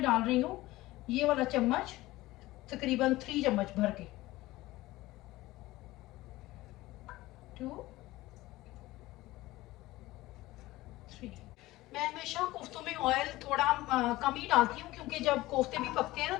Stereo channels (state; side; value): quieter; right; 18.2 dB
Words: डाल रही हूँ ये वाला चम्मच, तकरीबन 3 चम्मच भर के, 2 3। मैं हमेशा कोफ्तों में ऑयल थोड़ा कम ही डालती हूँ, क्योंकि जब कोफ्ते भी पकते हैं ना